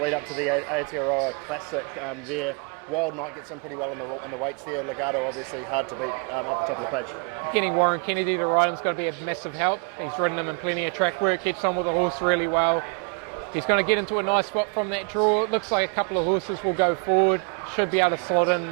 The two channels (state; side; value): quieter; left; 36.5 dB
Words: lead up to the Aotearoa Classic there. Wild Knight gets in pretty well in the weights there. Legato obviously hard to beat up the top of the page. Getting Warren Kennedy to ride him's got to be a massive help. He's ridden him in plenty of track work, gets on with the horse really well. He's going to get into a nice spot from that draw. It looks like a couple of horses will go forward. Should be able to slot in